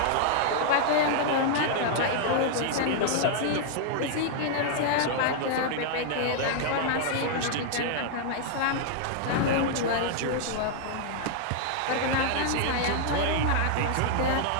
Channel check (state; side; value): different; both; correlation -0.01